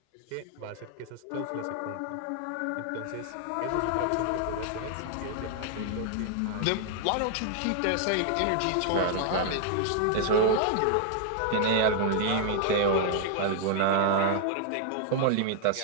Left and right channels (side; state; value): both; different; correlation 0.00